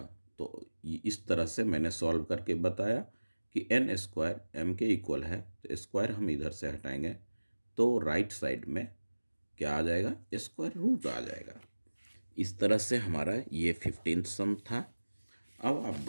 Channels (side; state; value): both; inverted; correlation -1.00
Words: तो इस तरह से मैंने सॉल्व करके बताया कि n स्क्वायर m के इक्वल है, तो स्क्वायर हम इधर से हटाएंगे तो राइट साइड में क्या आ जाएगा? स्क्वायर रूट आ जाएगा। इस तरह से हमारा ये 15th सम था। अब आप